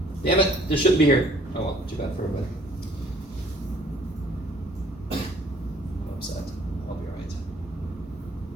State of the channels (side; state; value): both; normal; correlation 0.58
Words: Damn it, this shouldn't be here. Oh well, too bad for everybody. I'm upset. I'll be alright.